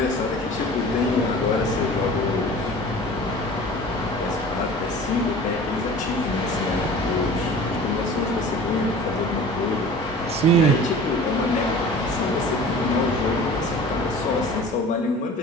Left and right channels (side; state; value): both; normal; correlation 0.41